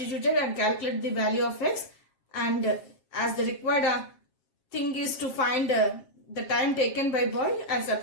and calculated the value of x, and as the required thing is to find the time taken by boy, I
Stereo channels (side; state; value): right; late; 7.4 ms